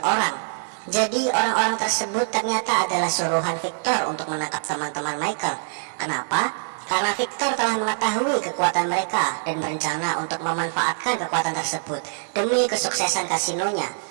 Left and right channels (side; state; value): left; silent; 63 dB below the other